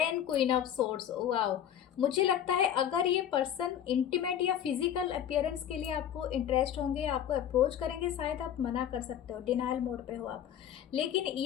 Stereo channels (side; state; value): right; quieter; 10.0 dB